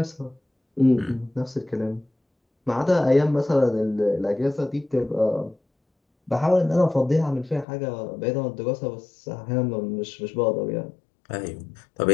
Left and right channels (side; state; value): right; drops out; at 7.7 s